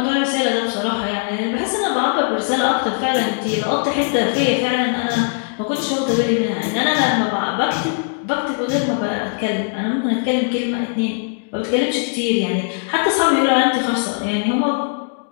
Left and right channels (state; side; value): silent; right; digital silence